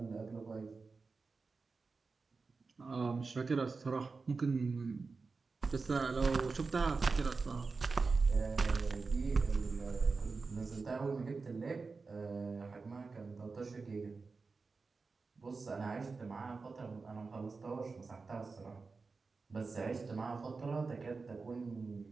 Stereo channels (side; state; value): left; quieter; 4.3 dB